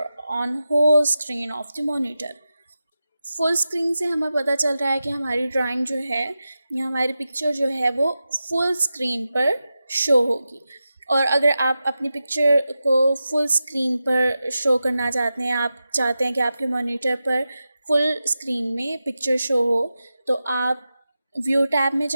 on whole screen of the monitor. Full screen से हमें पता चल रहा है कि हमारी drawing जो है या हमारी पिक्चर जो है वो फुल स्क्रीन पर शो होगी. और अगर आप अपनी पिक्चर को फुल स्क्रीन पर शो करना चाहते हैं, आप चाहते हैं कि आपके मॉनिटर पर फुल स्क्रीन में पिक्चर शो हो, तो आप व्यू टैब में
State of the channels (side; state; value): both; inverted; correlation -0.92